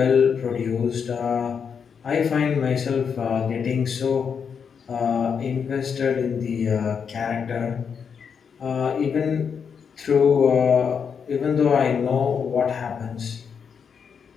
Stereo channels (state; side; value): quieter; right; 6.7 dB